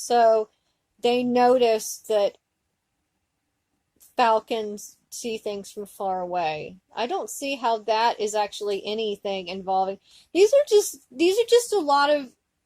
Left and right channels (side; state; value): both; identical; correlation 1.00